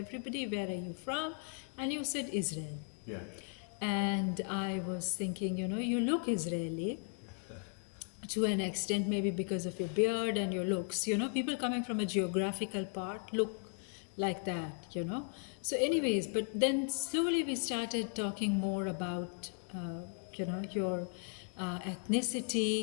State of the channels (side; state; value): right; quieter; 40.0 dB